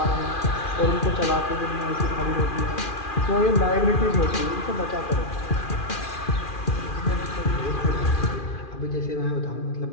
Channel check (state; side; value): late; right; 2.4 ms